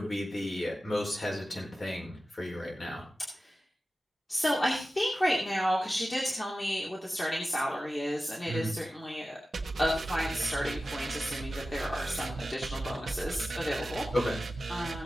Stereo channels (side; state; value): both; normal; correlation 0.94